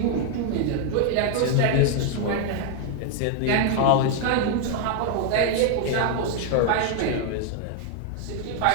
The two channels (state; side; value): different; both; correlation 0.00